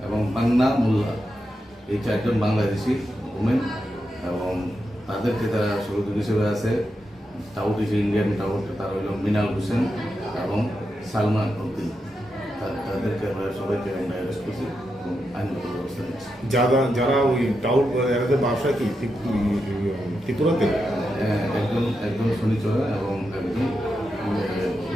এবং বান্না মোল্লা, এই 4 জন বাংলাদেশি ওমেন এবং তাদেরকে তারা সহযোগী হিসেবে আছে টাউট হিসেবে ইন্ডিয়ান টাউট, তারা হইল মিনাল হোসেন এবং সালমান উদ্দিন। তাদেরকে আমরা সবাইকে আমরা অ্যারেস্ট করছি এবং আইনগত ব্যবস্থা নিচ্ছি। যারা ওই টাউট এলাকাতে ব্যবসায় কি ত্রিপুরাতে? একজন শনিচর এবং একজন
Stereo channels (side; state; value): both; normal; correlation 0.86